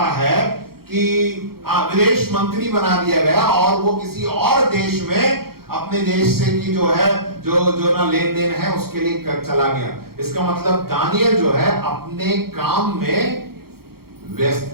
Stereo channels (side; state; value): left; late; 0.94 ms